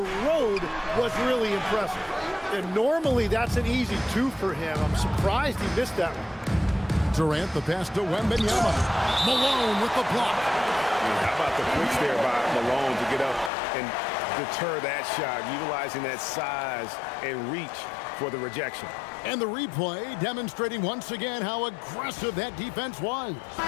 was really impressive. And normally that's an easy 2 for him. I'm surprised he missed that one. Durant, the pass to Wembanyama. Malone with the block. How about the push there by Malone to get up and deter that shot, utilizing that size and reach for the rejection. And the replay demonstrating once again how aggressive that defense was.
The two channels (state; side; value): drops out; right; at 13.5 s